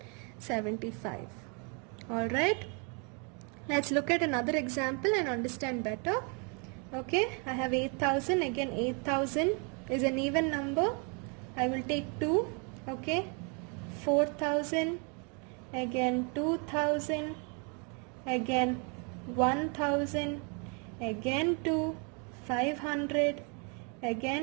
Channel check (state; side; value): quieter; left; 36.0 dB